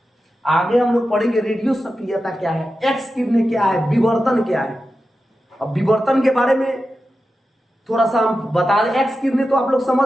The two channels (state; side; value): normal; both; correlation 0.91